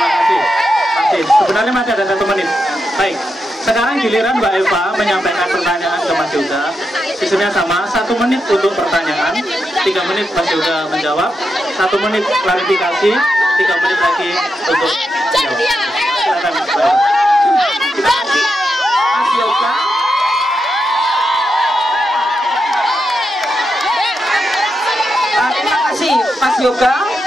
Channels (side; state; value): both; normal; correlation 0.86